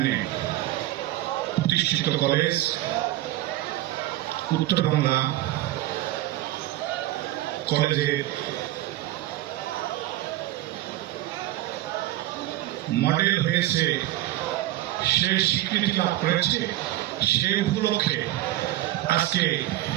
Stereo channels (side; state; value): left; quieter; 15.5 dB